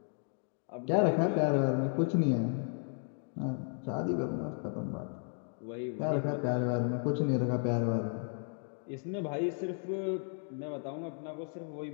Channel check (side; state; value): right; silent; 55 dB below the other